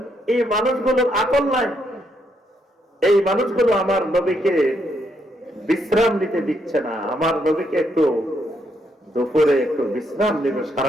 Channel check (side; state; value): both; normal; correlation 0.76